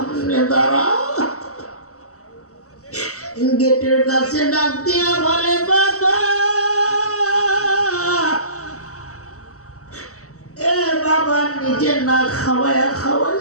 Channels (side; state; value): right; late; 0.65 ms